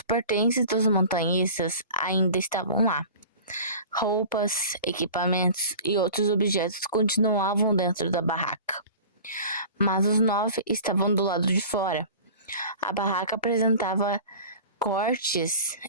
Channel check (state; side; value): inverted; both; correlation -0.39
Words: pertences dos montanhistas ainda estavam lá. Roupas, equipamentos e outros objetos continuavam dentro da barraca. Mas os 9 estavam do lado de fora. A barraca apresentava cortes